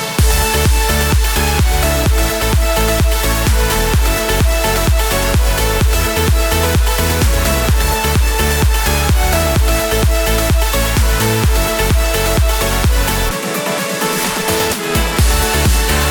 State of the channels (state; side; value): identical; both; correlation 1.00